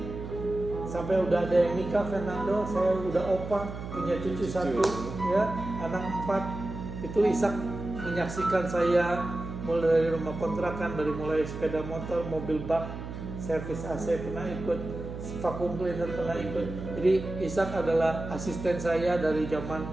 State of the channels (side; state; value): right; noise; hum, 9 dB below the sound